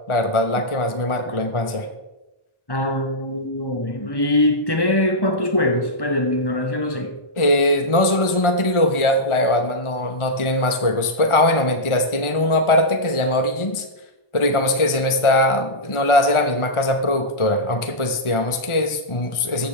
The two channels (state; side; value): late; right; 1.4 ms